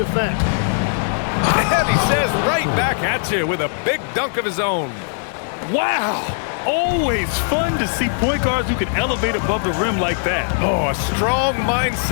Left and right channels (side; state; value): right; silent; 59 dB below the other